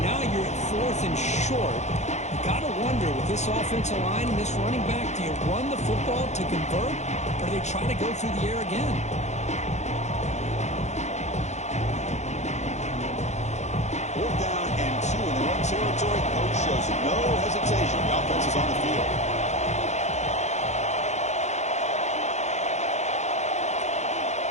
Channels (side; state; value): right; late; 0.33 ms